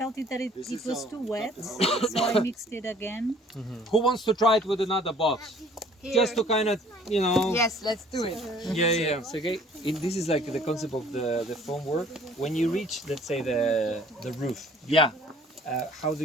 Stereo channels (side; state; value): both; normal; correlation 0.55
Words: it that it was too wet, so I mixed it again. who wants to try it with another box? Just to kind of, you know. Yes, let's do it. Yeah. Sergey, this is like the concept of the foam work. When you reach, let's say, the roof, Yeah. how do